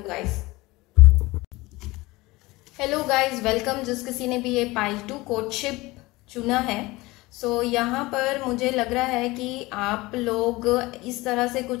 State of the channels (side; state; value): right; quieter; 21.0 dB